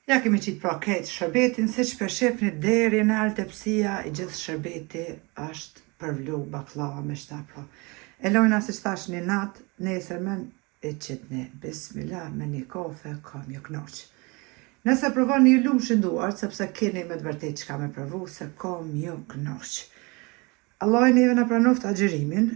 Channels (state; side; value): quieter; left; 27.4 dB